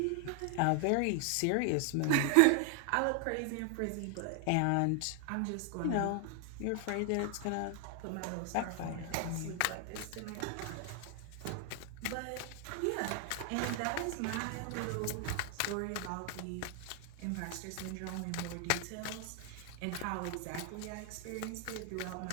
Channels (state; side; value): different; both; correlation 0.00